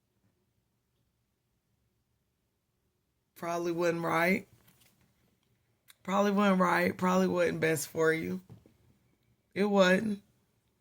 probably wasn't right. Probably wasn't right. Probably wasn't best for you. It wasn't.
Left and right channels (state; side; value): identical; both; correlation 1.00